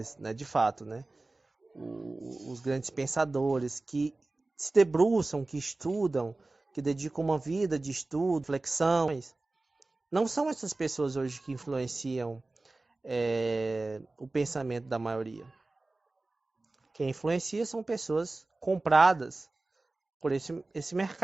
né, de fato, né, os grandes pensadores que se debruçam, que estudam, que dedicam uma vida de estudo, reflexões. Não são essas pessoas hoje que influenciam o pensamento da maioria. Quem influencia são pessoas compradas por esse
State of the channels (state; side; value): quieter; left; 3.1 dB